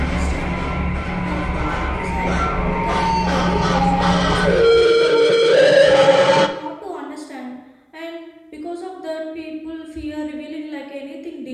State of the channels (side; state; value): both; identical; correlation 1.00